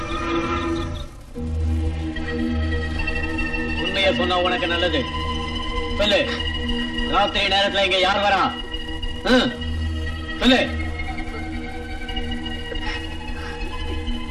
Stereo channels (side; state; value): both; identical; correlation 1.00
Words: உண்மையை சொன்னா உனக்கு நல்லது. சொல்லு, ராத்திரி நேரத்துல இங்க யார் வரா? சொல்லு.